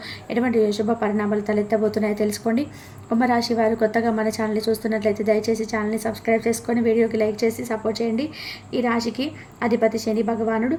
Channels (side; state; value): both; identical; correlation 1.00